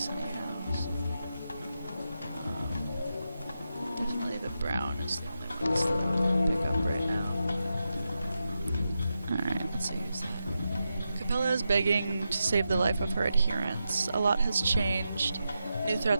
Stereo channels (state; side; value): inverted; both; correlation -0.88